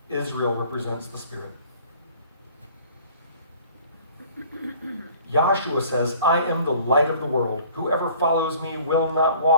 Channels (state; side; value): inverted; both; correlation -0.51